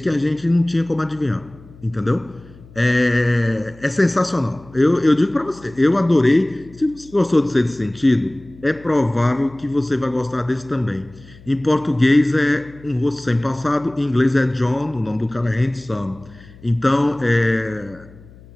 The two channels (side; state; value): left; noise; hum, 22 dB below the sound